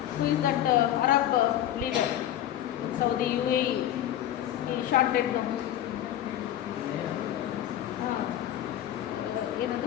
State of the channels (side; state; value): right; quieter; 12.0 dB